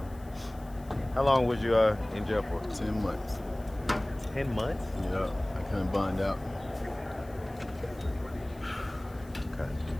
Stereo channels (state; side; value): noise; left; hiss, 26 dB below the sound